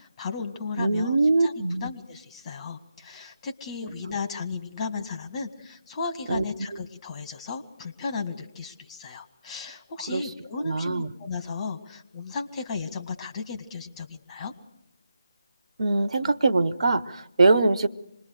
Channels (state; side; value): inverted; both; correlation -0.85